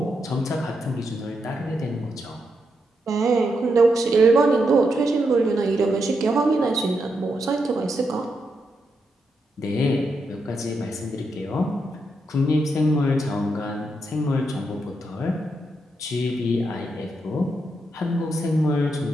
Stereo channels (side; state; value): both; normal; correlation 0.82